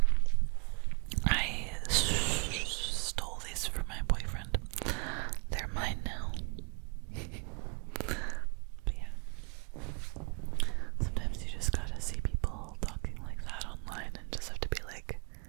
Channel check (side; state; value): left; quieter; 35.0 dB